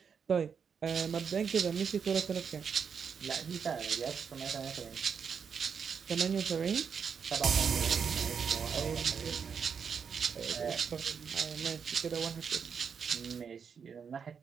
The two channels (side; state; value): left; quieter; 6.6 dB